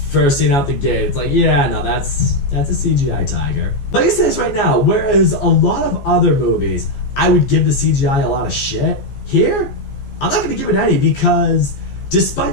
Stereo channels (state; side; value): late; right; 14 ms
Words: First scene out the gate, it's like, yeah, no, that's a CGI tiger. Let me say this right now, whereas a lot of other movies, I would give the CGI a lot of shit, here, I'm not going to give it any, because